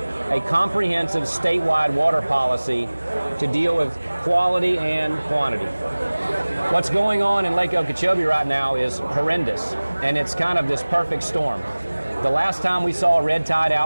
a comprehensive statewide water policy to deal with quality and quantity. What's going on in Lake Okeechobee right now is horrendous, and it's kind of this perfect storm. The last time we saw a red tide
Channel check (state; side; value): inverted; both; correlation -1.00